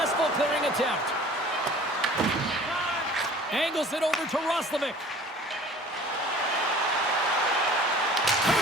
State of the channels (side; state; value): both; normal; correlation 0.47